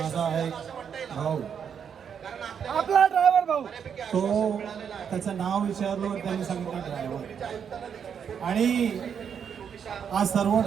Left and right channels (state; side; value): quieter; left; 7.5 dB